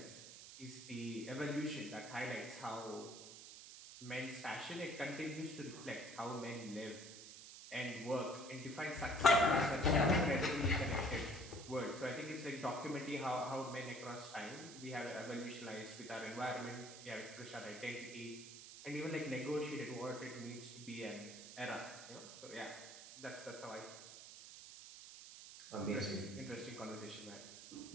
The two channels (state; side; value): noise; right; hiss, 13 dB below the sound